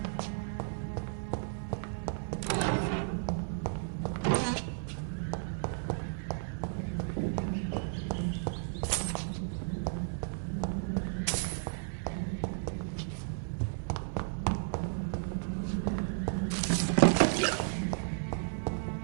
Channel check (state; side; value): silent; left; 55 dB below the other